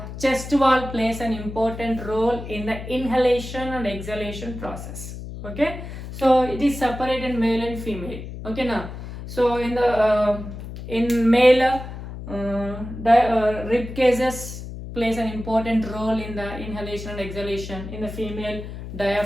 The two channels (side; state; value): left; noise; hum, 10 dB below the sound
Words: chest wall plays an important role in the inhalation and exhalation process. Okay, so it is separated male and female. Okay now, so in the in male rib cages plays an important role in the inhalation and exhalation. In the female,